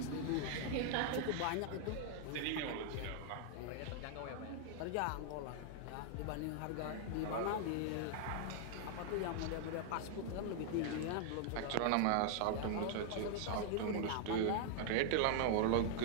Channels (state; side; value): different; both; correlation 0.00